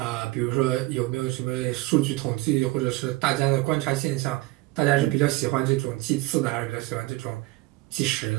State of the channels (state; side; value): quieter; left; 20.5 dB